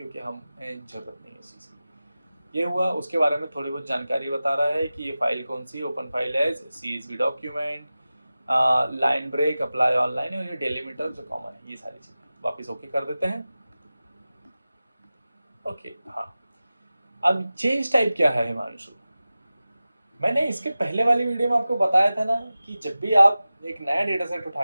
हमें जरूरत नहीं है इस चीज़ की। ये हुआ, उसके बारे में थोड़ी बहुत जानकारी बता रहा है कि ये फाइल कौन सी, open file as CSV document, line break, apply online, और ये डेलीमीटर जो कॉमन है, ये सारी चीज़ें। वापिस ओके कर देते हैं, ओके। हाँ अब चेंज टाइप क्या है हिमांशु, मैंने इसके पहले वाली वीडियो में आपको बताया था ना कि जब भी आप एक नया डेटा सेट उठा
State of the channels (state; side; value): inverted; both; correlation -0.96